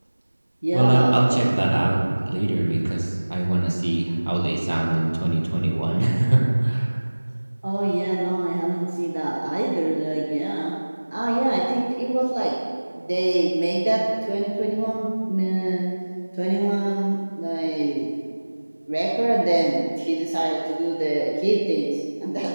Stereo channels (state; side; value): inverted; both; correlation -1.00